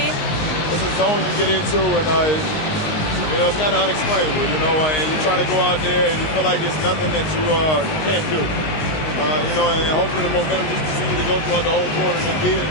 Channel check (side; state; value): right; late; 19 ms